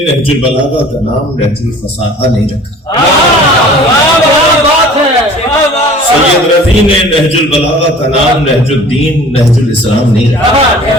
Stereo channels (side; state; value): both; normal; correlation 0.47